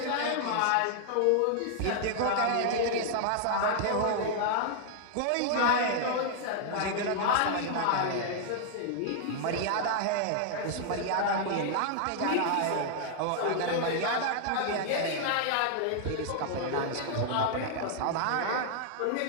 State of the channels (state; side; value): different; both; correlation 0.00